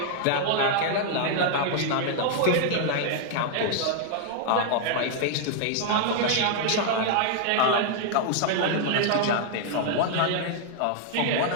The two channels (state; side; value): different; both; correlation -0.01